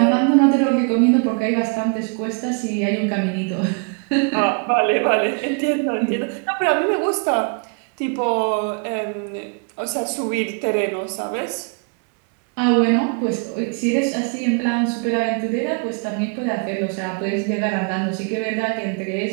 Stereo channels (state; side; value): quieter; left; 38.1 dB